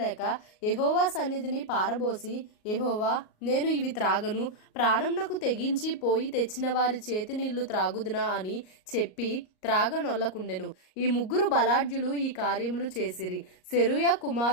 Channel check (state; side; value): late; right; 38 ms